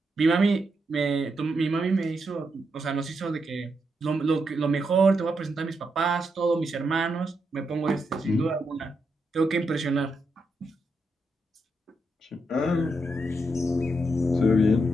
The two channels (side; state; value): both; normal; correlation 0.83